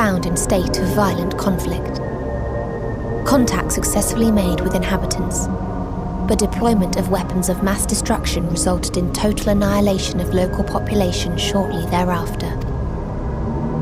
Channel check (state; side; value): identical; both; correlation 1.00